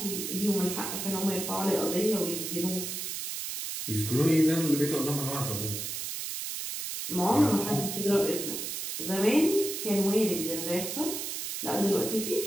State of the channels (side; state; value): right; noise; hiss, 5 dB below the sound